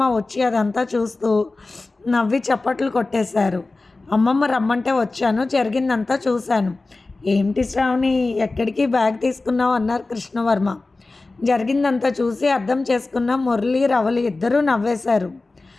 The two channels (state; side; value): quieter; right; 3.3 dB